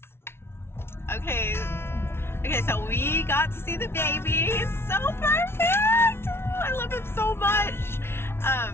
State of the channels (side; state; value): right; late; 0.12 ms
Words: Okay, so we got to see the baby. He's so perfect. I love him so much.